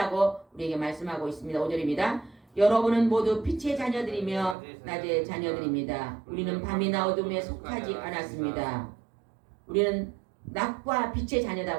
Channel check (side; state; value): left; drops out; at 4.5 s